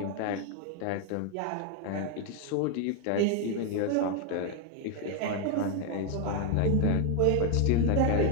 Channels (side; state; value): both; different; correlation 0.00